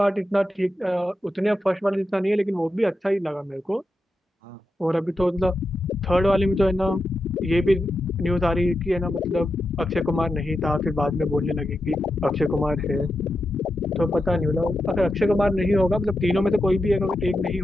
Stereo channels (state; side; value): normal; both; correlation 0.88